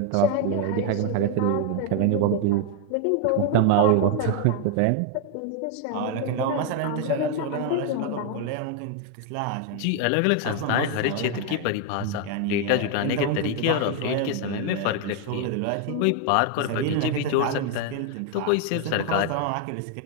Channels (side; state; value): both; different; correlation 0.01